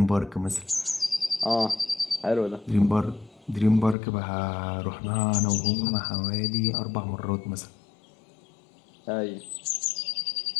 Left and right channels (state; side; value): drops out; right; at 4.0 s